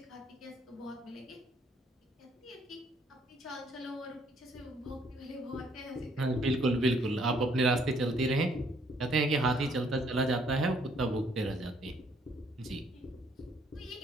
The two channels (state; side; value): normal; both; correlation 0.66